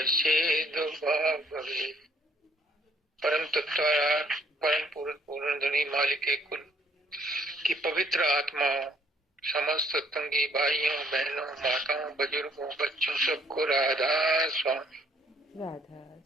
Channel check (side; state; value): both; normal; correlation 0.65